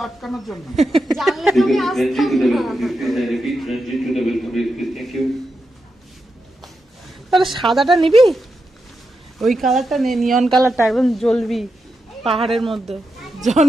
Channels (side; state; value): both; normal; correlation 0.87